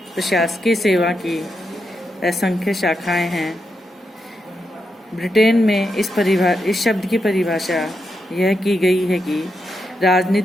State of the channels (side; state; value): both; normal; correlation 0.84